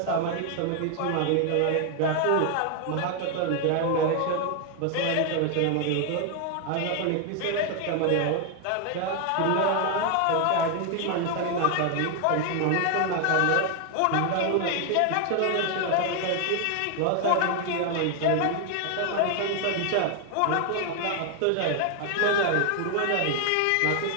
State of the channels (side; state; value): both; different; correlation 0.00